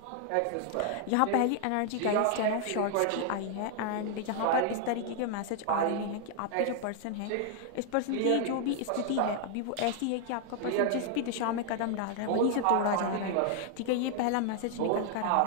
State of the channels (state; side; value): different; both; correlation 0.00